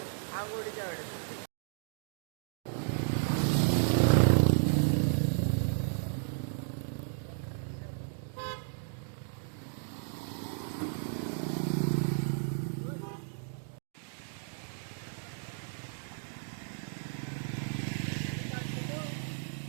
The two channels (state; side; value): silent; left; digital silence